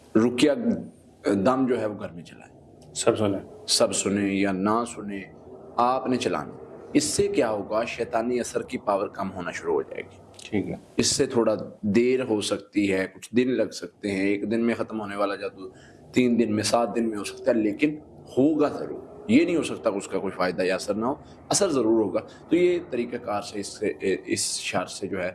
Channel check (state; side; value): identical; both; correlation 1.00